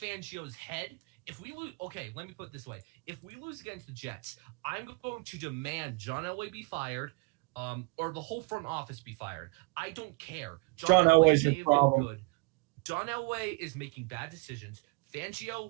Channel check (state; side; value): quieter; left; 29.3 dB